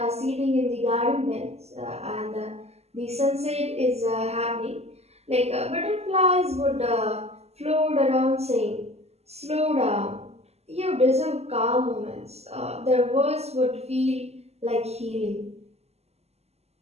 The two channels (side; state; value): left; late; 0.30 ms